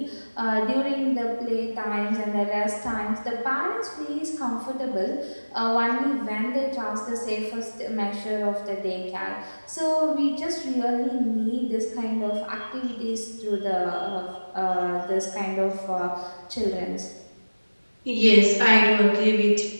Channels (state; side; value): inverted; both; correlation -1.00